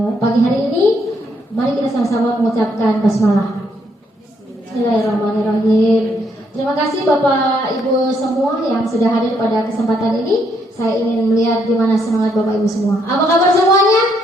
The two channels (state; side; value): normal; both; correlation 0.73